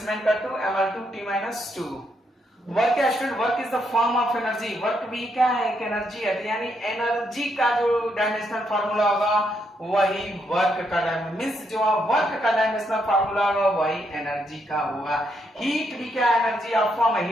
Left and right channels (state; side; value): normal; both; correlation 0.77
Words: का 2, ML2 T माइनस 2। वर्क क्या student? Work is the form of energy. Work भी क्या है? एक एनर्जी है। यानी एनर्जी का जो डायमेंशनल फार्मूला होगा वही वर्क का मीन्स जो वर्क का डायमेंशनल फार्मूला होगा वही एनर्जी का होगा। हीट भी क्या एनर्जी ऑफ फॉर्म है,